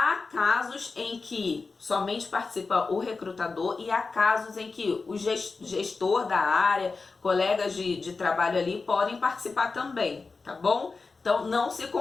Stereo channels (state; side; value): quieter; right; 4.2 dB